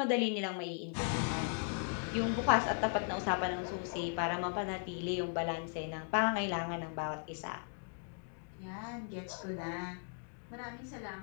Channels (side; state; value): right; silent; 53 dB below the other